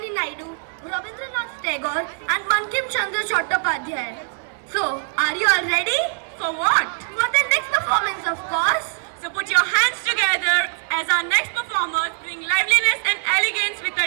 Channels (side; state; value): left; silent; 64 dB below the other